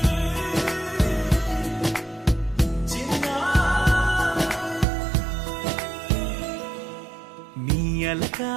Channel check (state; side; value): drops out; left; at 4.9 s